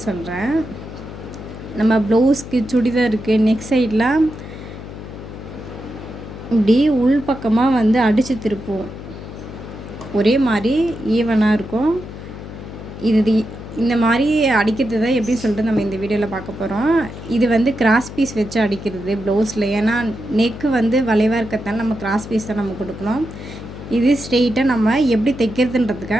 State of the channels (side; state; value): left; noise; hum, 12 dB below the sound